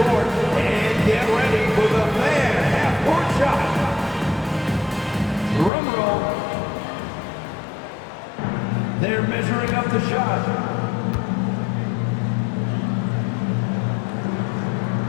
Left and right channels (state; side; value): drops out; right; at 5.7 s